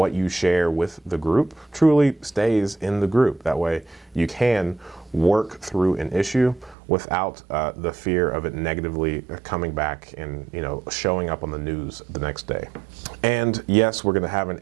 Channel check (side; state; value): left; drops out; at 6.8 s